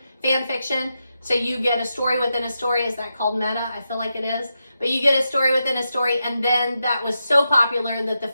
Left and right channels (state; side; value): inverted; both; correlation -0.87